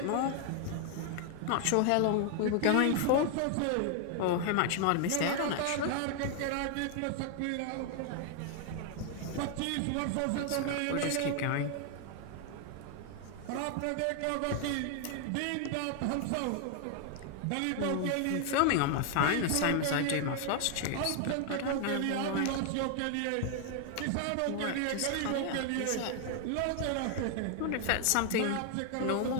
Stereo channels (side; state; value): both; different; correlation 0.00